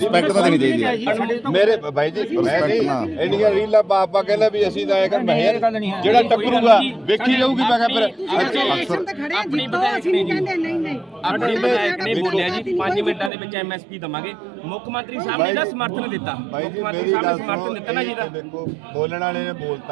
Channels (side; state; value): left; drops out; at 13.3 s